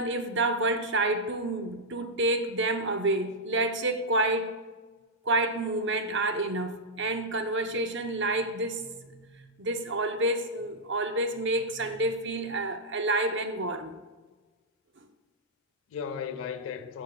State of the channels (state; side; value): normal; both; correlation -0.07